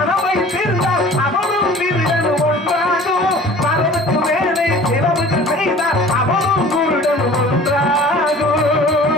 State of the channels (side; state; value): both; normal; correlation 0.46